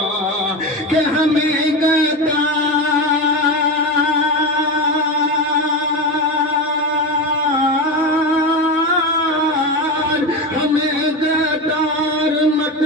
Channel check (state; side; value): normal; both; correlation 0.19